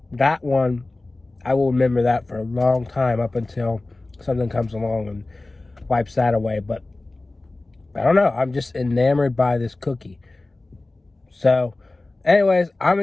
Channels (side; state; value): right; quieter; 3.1 dB